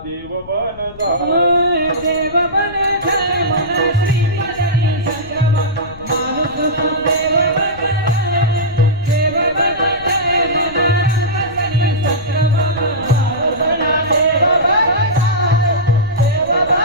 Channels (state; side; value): noise; left; rumble, 18 dB below the sound